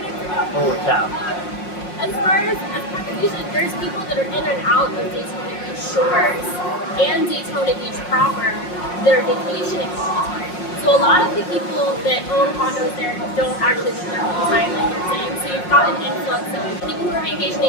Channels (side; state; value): right; late; 5.5 ms